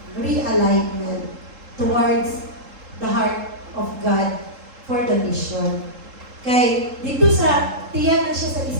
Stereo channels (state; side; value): late; left; 3.7 ms